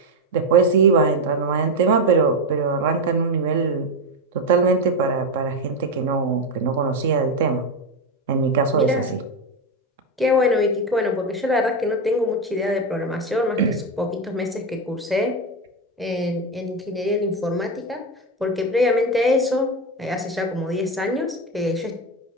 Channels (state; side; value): normal; both; correlation 0.12